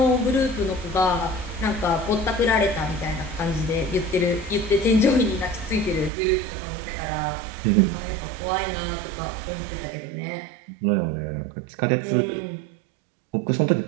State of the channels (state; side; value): drops out; left; at 6.1 s